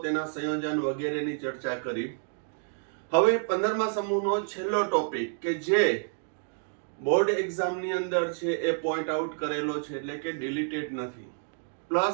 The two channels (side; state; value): left; silent; 58 dB below the other